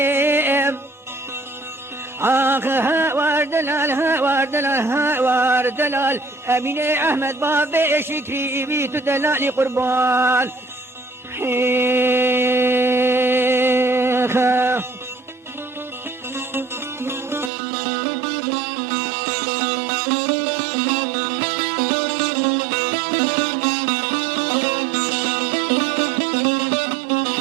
آخها ورد لالها ورد لالها ورد لال أمين أحمد بابي شكري بيت دلالي قربان حيخا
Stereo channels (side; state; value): left; drops out; at 17.5 s